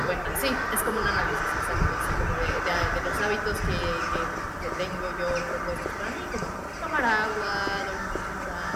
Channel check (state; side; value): identical; both; correlation 1.00